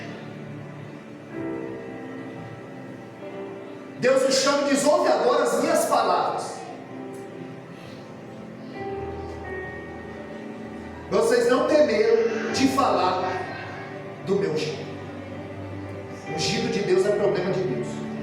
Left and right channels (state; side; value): identical; both; correlation 1.00